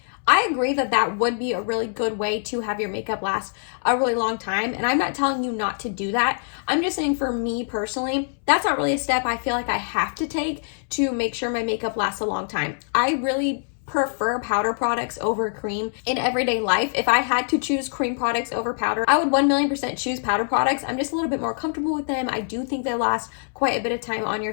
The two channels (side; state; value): right; silent; 63 dB below the other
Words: I agree that that would be a really good way to have your makeup last a really long time. And I'm not telling you not to do that. I'm just saying for me personally, that's not really a step I feel like I have to take to make sure my makeup lasts a long time. I really prefer powder products over cream in everyday life. If I had to choose cream products over powder, I would 1,000,000% choose powder products. I'm just a little bit more comfortable with them. I do think they last quite a bit of time on your